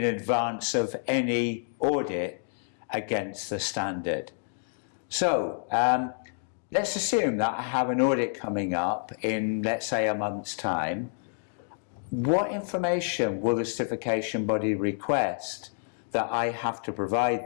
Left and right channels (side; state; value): right; silent; digital silence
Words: advance of any audit against the standard. So let's assume that I have an audit coming up in, let's say, a month's time. What information will the certification body request that I have to